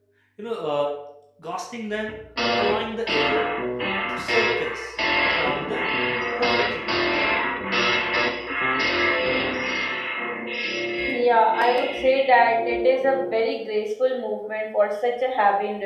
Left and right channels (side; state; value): both; identical; correlation 1.00